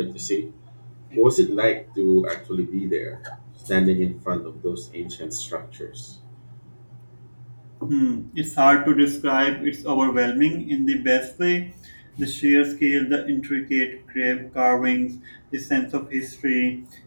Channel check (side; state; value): both; inverted; correlation -1.00